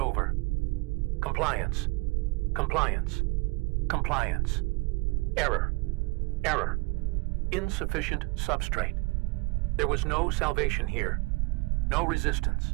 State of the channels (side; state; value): left; quieter; 26.4 dB